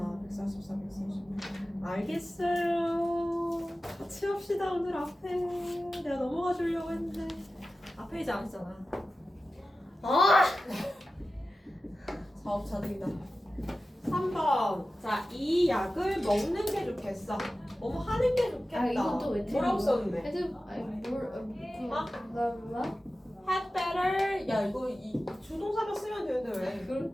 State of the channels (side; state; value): both; normal; correlation 0.94